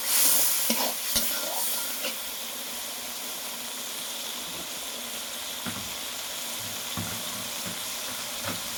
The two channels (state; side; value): identical; both; correlation 1.00